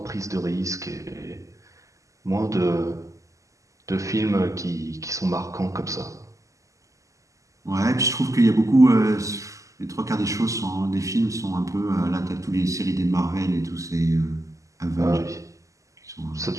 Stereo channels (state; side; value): late; left; 0.16 ms